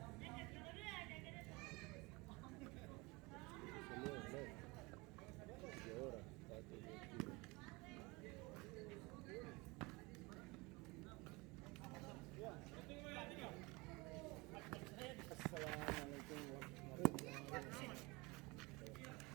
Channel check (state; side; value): quieter; left; 25.1 dB